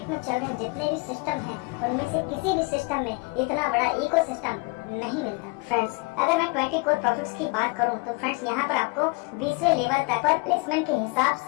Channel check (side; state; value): right; quieter; 29.2 dB